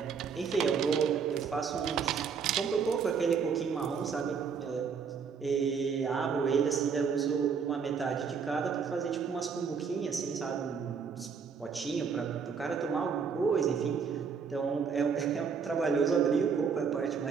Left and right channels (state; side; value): quieter; left; 6.2 dB